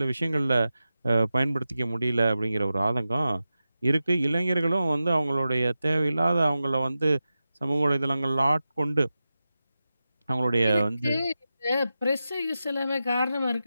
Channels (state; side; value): inverted; both; correlation -0.93